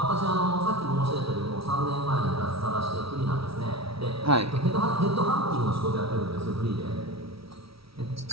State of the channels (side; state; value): left; late; 0.76 ms